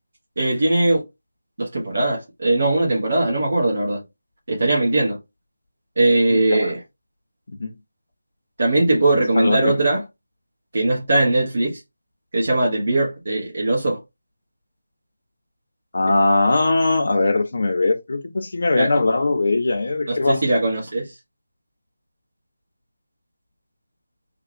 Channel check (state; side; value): inverted; both; correlation -0.90